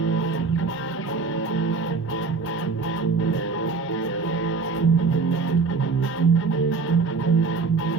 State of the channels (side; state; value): left; quieter; 4.4 dB